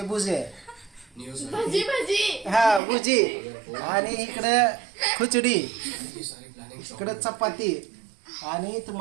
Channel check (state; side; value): drops out; left; at 2.8 s